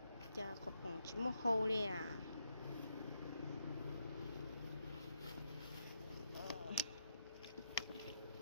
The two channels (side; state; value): both; inverted; correlation -0.79